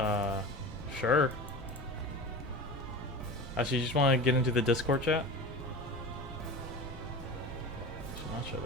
Sure. Actually, you just want to get into the Discord chat? Should not show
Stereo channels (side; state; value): both; normal; correlation 0.32